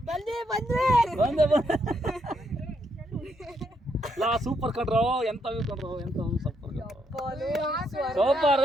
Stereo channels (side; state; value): both; normal; correlation 0.76